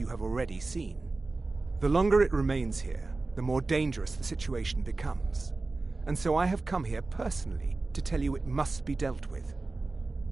have already seen. The longer it remains here, the more dangerous the situation becomes. And so I have come here personally to tell you it must be dealt with.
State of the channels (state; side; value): quieter; left; 3.5 dB